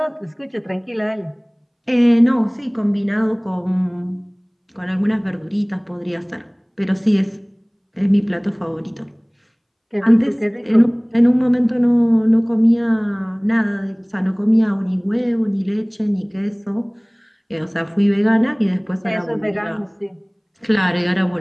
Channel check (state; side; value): identical; both; correlation 1.00